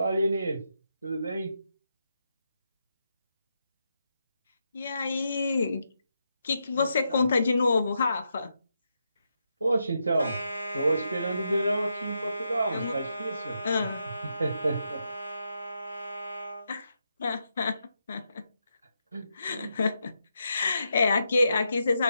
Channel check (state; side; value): inverted; both; correlation -0.83